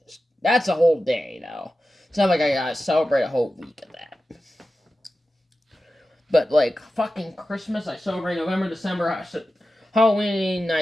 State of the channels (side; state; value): both; normal; correlation 0.93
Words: just... That's a whole day, though. It's not like I gotta celebrate a whole week of that. But, like, fucking Christmas, I celebrate November, December. Halloween,